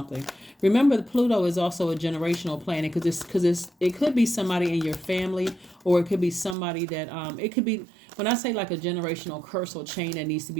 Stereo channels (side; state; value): left; drops out; at 6.6 s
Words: Remember, the Pluto is also a generational planet because it could be somebody in your family, or it could be somebody that it could be, when I say like a generational curse or chain that needs to